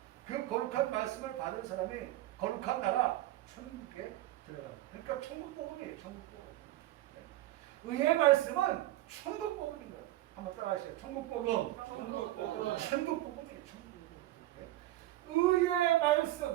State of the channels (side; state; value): left; quieter; 15.6 dB